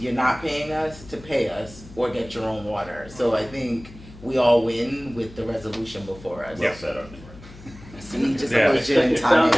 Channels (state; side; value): noise; left; hum, 19 dB below the sound